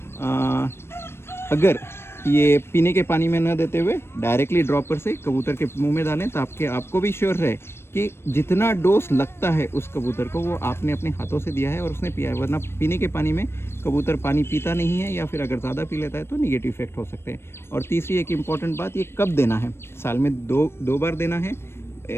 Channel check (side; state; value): right; late; 0.12 ms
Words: अगर ये पीने के पानी में न देते हुए डायरेक्टली ड्रॉपर से कबूतर के मुंह में डालें तो आपको भी श्योर रहे कि जितना डोज लगता है उस कबूतर को वो आपने अपने हाथों से दिया है और उसने पिया है। वरना पीने के पानी में कबूतर पानी पीता नहीं है, या फिर अगर ज़्यादा पी लेता है तो निगेटिव इफेक्ट हो सकते हैं। और तीसरी एक इम्पॉर्टेंट बात, ये कब देना है। साल में दो बार देना है।